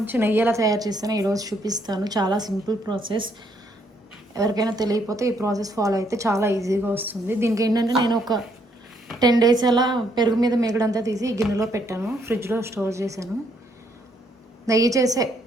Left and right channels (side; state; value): both; normal; correlation 0.71